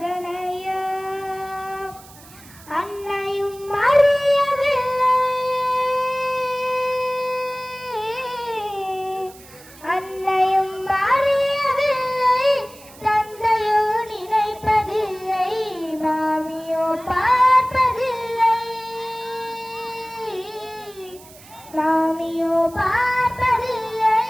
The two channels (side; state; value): right; noise; hiss, 21 dB below the sound